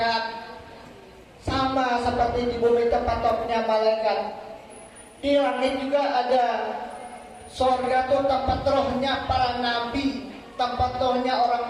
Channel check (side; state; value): both; identical; correlation 1.00